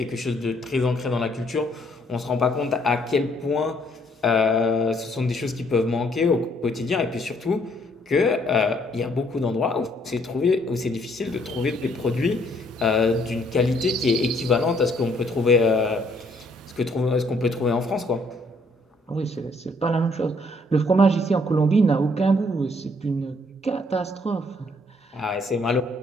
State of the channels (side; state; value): both; normal; correlation 0.66